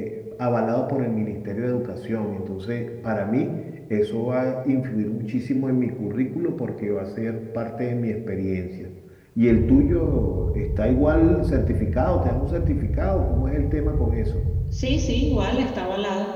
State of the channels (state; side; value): identical; both; correlation 1.00